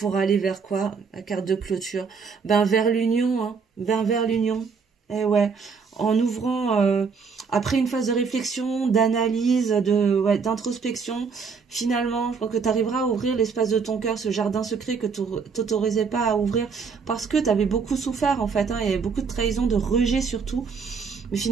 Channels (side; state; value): left; quieter; 5.5 dB